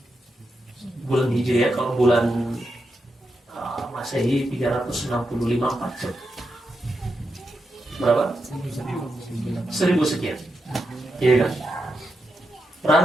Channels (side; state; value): both; normal; correlation 0.86